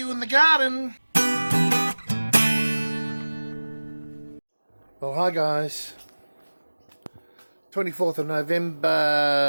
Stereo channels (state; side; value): inverted; both; correlation -1.00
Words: in the garden. Well, hi guys. 24th of